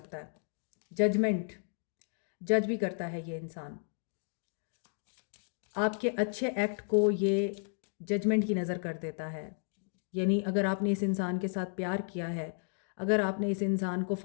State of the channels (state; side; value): silent; right; 56 dB below the other